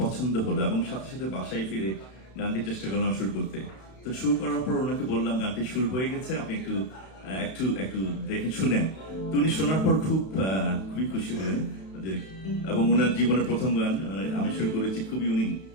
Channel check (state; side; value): late; right; 32 ms